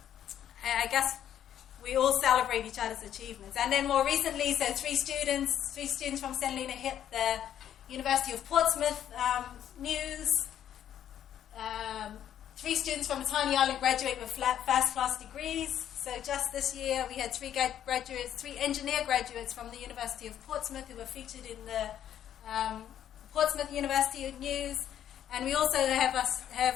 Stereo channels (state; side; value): quieter; right; 10.4 dB